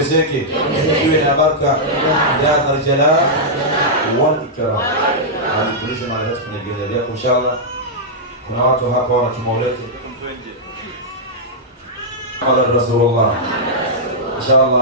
iwe na baraka, ya Dhal Jalal wal Ikram. Alitulisha mara yote kwenye gari yako inshallah. Kuna watu hapa wana kimaulete Muhammad Rasulullah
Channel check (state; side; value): normal; both; correlation -0.08